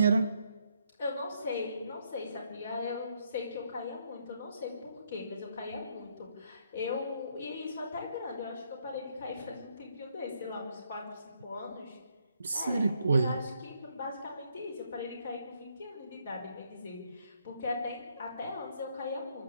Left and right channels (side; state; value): both; inverted; correlation -0.72